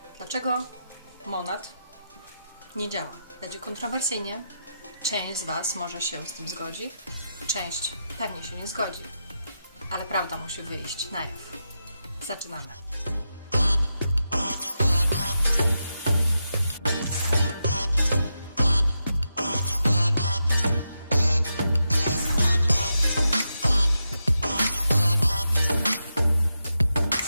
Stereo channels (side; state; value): both; inverted; correlation -0.87